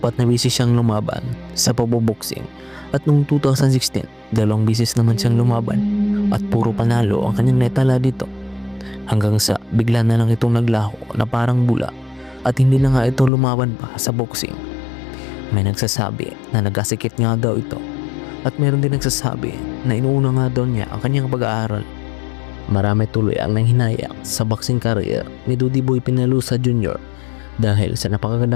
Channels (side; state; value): right; drops out; at 13.3 s